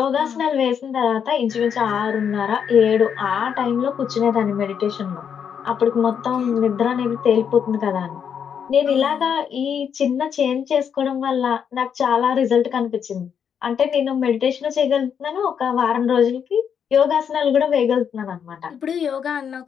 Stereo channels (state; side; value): quieter; right; 7.7 dB